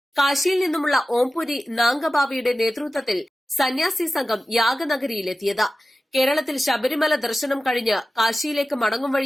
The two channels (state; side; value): normal; both; correlation 0.95